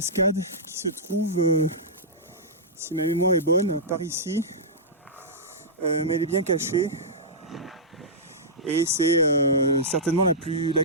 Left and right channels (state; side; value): normal; both; correlation -0.13